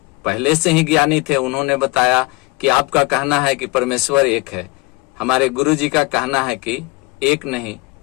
पहले से ही ज्ञानी थे, उन्होंने बताया कि आपका कहना है कि परमेश्वर एक है, हमारे गुरु जी का कहना है कि एक नहीं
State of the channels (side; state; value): right; quieter; 24.7 dB